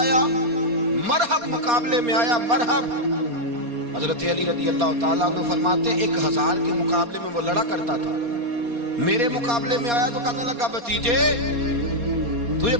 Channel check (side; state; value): left; late; 4.2 ms